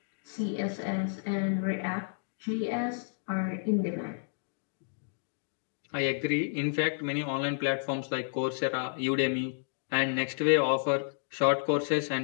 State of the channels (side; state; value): right; silent; digital silence